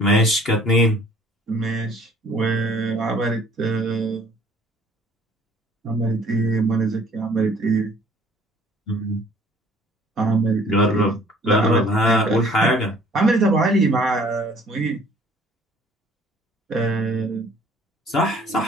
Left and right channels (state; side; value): normal; both; correlation 0.55